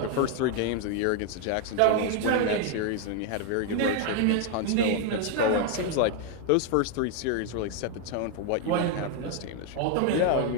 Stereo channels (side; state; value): both; different; correlation 0.00